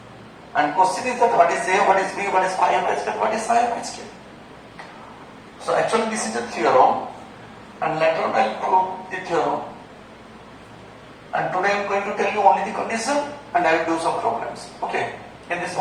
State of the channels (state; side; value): identical; both; correlation 1.00